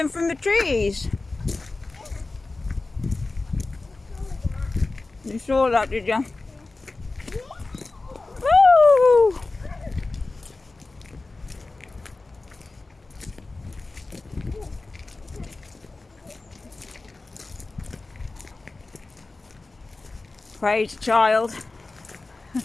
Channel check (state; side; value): quieter; right; 3.4 dB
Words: from the trees. You saw that, did you? Woo! Praise child.